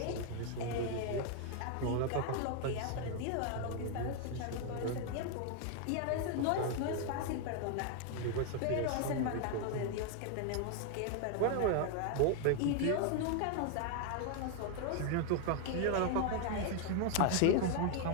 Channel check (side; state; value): both; different; correlation 0.00